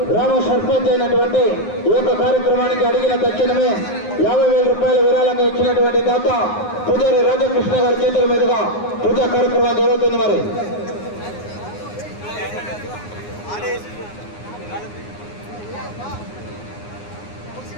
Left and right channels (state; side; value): late; right; 9.6 ms